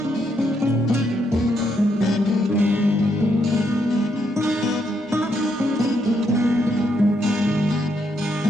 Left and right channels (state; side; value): normal; both; correlation 0.76